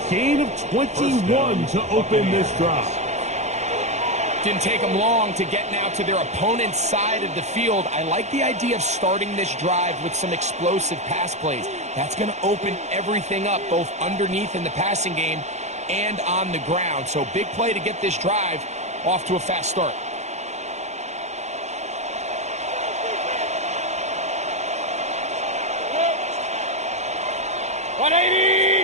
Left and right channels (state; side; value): late; left; 0.33 ms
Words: gain of 21 to open this drive. Didn't take them long to get now to their opponent's side of the field. I like the idea of starting this drive with some explosive pass plays. That's going to open everything up, both underneath in the passing game and on the ground. So big play to get this drive off to a fast start.